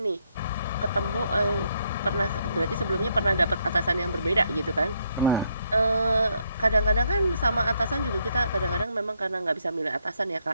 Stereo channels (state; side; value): inverted; both; correlation -0.74